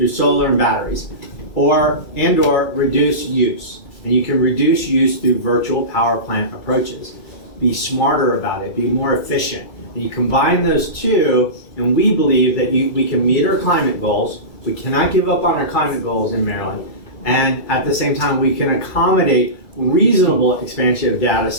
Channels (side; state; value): right; late; 2.3 ms